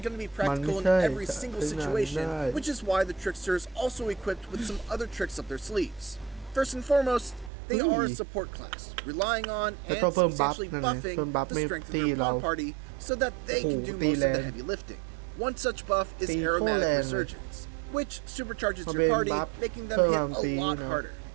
going to be practical in every single situation, which is why the Trickster is also equipped with some other tricks up their sleeves. First and foremost, they are a support class, relying on and substantially buffing the strength of your pawn party so that they can do most of the heavy lifting. One such buff is Aromatic Resurgence, which supercharges your party, making them hit a lot harder.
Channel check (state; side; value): drops out; left; at 7.5 s